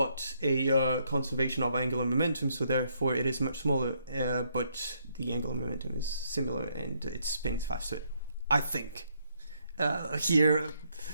a conservation of angular momentum, so therefore it is much smaller, but the angular momentum is similar and it spins faster, I think. Here,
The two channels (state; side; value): inverted; both; correlation -0.73